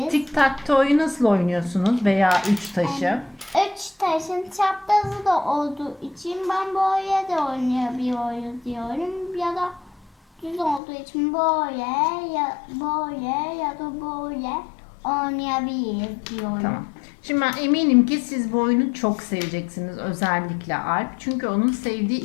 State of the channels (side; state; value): right; drops out; at 10.8 s